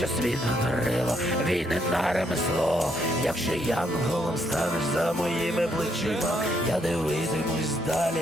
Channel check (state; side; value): normal; both; correlation 0.73